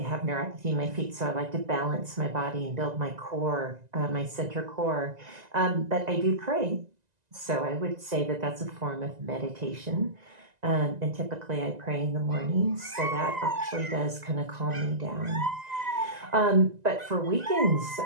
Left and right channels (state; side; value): late; left; 1.9 ms